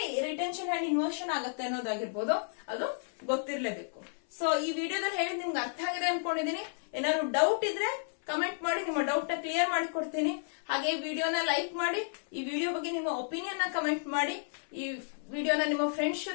ರಿಟೆನ್ಷನ್ ಅಂಡ್ ಇನ್ವರ್ಷನ್ ಆಗುತ್ತೆ ಅನ್ನೋದಾಗಿರ್ಬೋದು ಅದು ಗೊತ್ತಿರ್ಲೇಬೇಕು. ಸೊ ಈ ವಿಡಿಯೋದಲ್ಲಿ ಹೇಳಿದ್ ನಿಮ್ಗೆ ಅರ್ಥ ಆಗಿದೆ ಅನ್ಕೊಂಡಿದೀನಿ. ಏನಾದ್ರು ಡೌಟ್ ಇದ್ರೆ ಕಮೆಂಟ್ ಮಾಡಿ, ನಿಮ್ಮ ಡೌಟ್ ನ ಕ್ಲಿಯರ್ ಮಾಡಿ ಕೊಡ್ತೀನಿ. ಹಾಗೆ ಈ ವಿಡಿಯೋನ ಲೈಕ್ ಮಾಡಿ, ಈ ವಿಡಿಯೋ ಬಗ್ಗೆ ನಿಮ್ಮ ಒಪಿನಿಯನ್ ನ ಕಮೆಂಟ್ ಮಾಡಿ, ಈ ವಿಡಿಯೋನ ನಿಮ್ಮ ಫ್ರೆಂಡ್ಸ್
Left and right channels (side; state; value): right; silent; 56 dB below the other